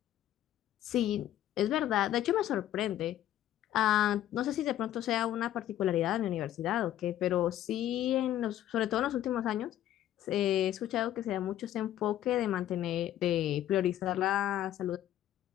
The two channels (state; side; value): quieter; right; 12.3 dB